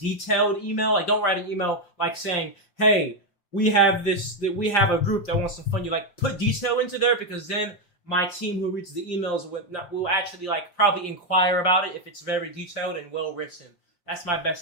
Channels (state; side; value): late; right; 5.7 ms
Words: email. Like, don't write an email like saying, "Hey, we have a group that wants to fund you." Like, put detail into there, because then my team who reads the emails will actually like probably inquire about it if it's very detailed and well written. That's my best